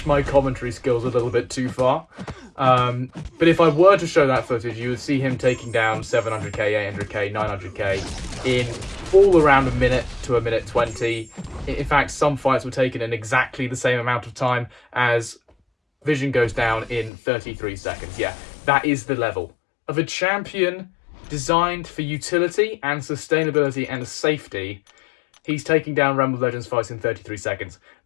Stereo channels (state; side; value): drops out; right; at 17.1 s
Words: my commentary skills a little bit too far. But if I were to show that footage, you would see him taking down 700k, 800k, 900k in all around a minute to a minute 20. In fact, some fights were taken in exactly the same amount of time as Vision goes down in 33 seconds. Yeah, that is the level of a champion designed for utility and sustainability and safety. He's taking down Realm of Legends fights in 33 seconds.